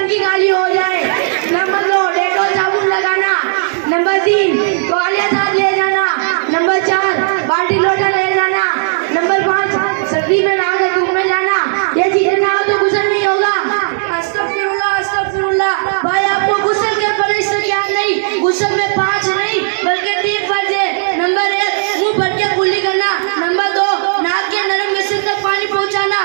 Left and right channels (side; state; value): left; silent; digital silence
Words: खाली हो जाए। नंबर 2, डेटॉल साबुन लगाना। नंबर 3, तौलिया साथ ले जाना। नंबर 4, बाल्टी लोटा ले जाना। नंबर 5, सर्दी में नहाकर धूप में जाना। ये चीजें ना हो तो गुस्ल नहीं होगा। अस्तगफिरुल्लाह, अस्तगफिरुल्लाह। भाई, आपको गुस्ल के फर्ज से क्या नहीं, गुस्ल में 5 नहीं बल्कि 3 फर्ज है। नंबर 1, मुंह भर के कुल्ली करना। नंबर 2, नाक के नरम हिस्से तक पानी पहुंचाना।